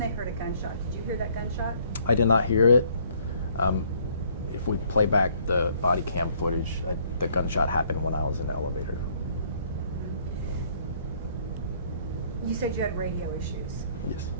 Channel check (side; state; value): both; inverted; correlation -0.63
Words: they heard a gunshot. Did you hear that gunshot? I did not hear it. If we play back the body cam footage, the gunshot happened when I was in the elevator. You said you had radio issues. Yes.